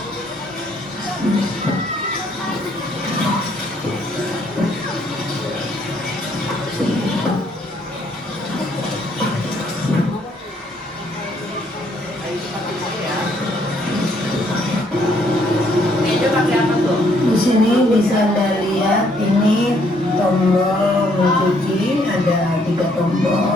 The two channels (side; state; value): both; normal; correlation 0.68